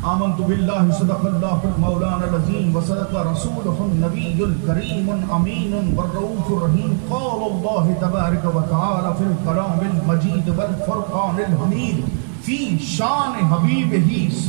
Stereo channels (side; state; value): left; silent; digital silence